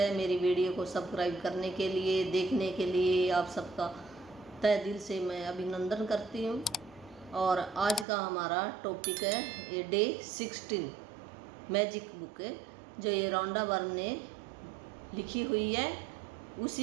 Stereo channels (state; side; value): drops out; left; at 8.1 s